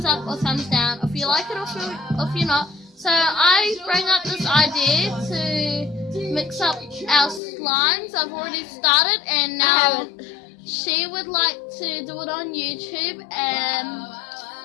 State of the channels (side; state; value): right; drops out; at 7.4 s